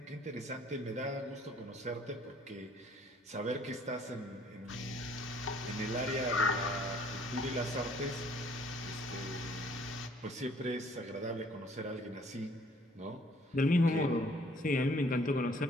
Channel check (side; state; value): both; normal; correlation 0.58